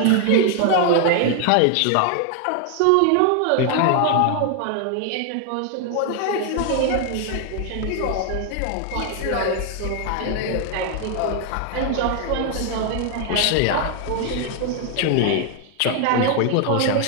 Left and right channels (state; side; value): different; both; correlation 0.00